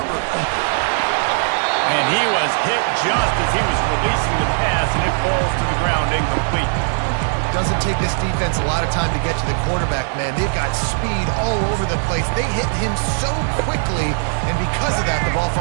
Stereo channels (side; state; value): left; silent; 56 dB below the other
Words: And he was hit just as he was releasing the pass, and it falls to the ground incomplete. Doesn't take this defense a lot of time to get to the quarterback, man. They've got speed all over the place. They hit him so quickly, and because of that, the ball